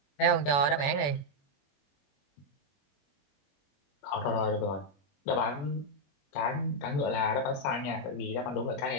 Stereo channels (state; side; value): late; right; 21 ms